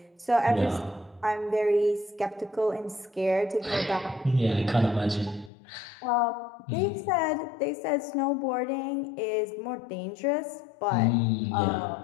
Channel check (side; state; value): right; drops out; at 5.5 s